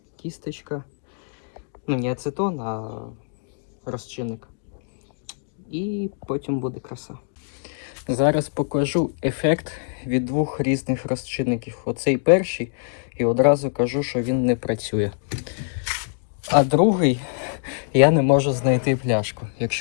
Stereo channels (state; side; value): silent; right; digital silence